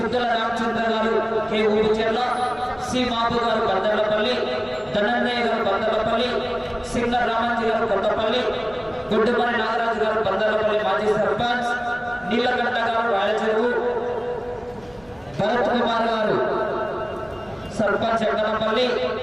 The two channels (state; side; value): noise; right; hum, 28 dB below the sound